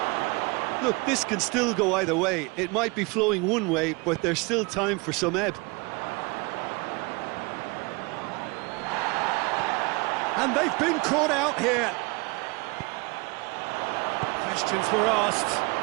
Look, this can still go either way. It might be flowing one way, but there's still time for some ebb. And they've been caught out here. Questions were asked,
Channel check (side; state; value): left; quieter; 27.0 dB